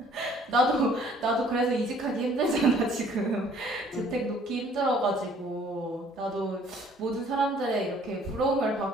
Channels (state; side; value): normal; both; correlation 0.58